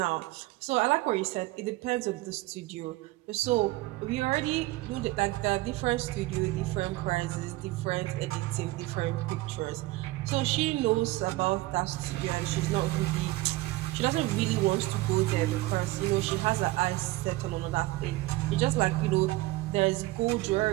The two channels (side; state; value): left; quieter; 19.1 dB